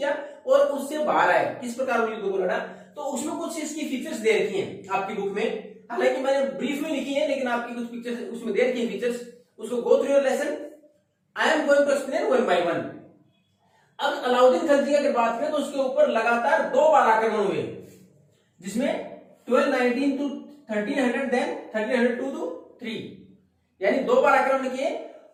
और उससे बाहर आए, किस प्रकार युद्ध को लड़ा. तो उसमें कुछ इसकी फीचर्स दे रखी हैं आपकी बुक में, हालांकि मैंने ब्रीफ में लिखी है, लेकिन आपकी कुछ पिक्चर्स उसमें दे रखी है फीचर्स. उसको go through your lesson. I am going to explain one by one. अब अलाउद्दीन खिलजी की अगर बात करें तो उसके ऊपर लगातार 2 बार आक्रमण हुए, जिसमें 1219 to 1300, देन 1302 to 3, यानी 2 बार आक्रमण किए.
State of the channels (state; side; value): identical; both; correlation 1.00